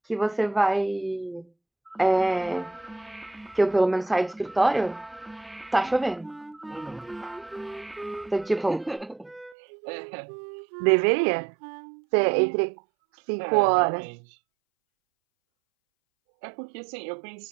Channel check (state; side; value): drops out; left; at 9.6 s